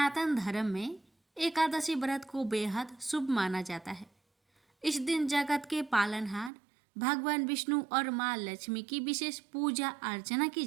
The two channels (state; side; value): drops out; left; at 6.5 s